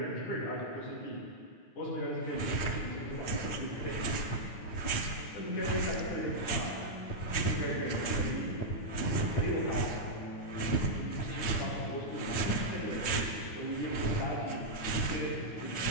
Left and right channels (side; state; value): right; late; 9.4 ms